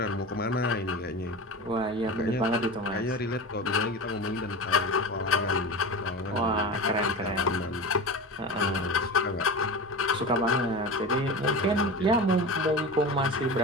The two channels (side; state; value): both; normal; correlation 0.28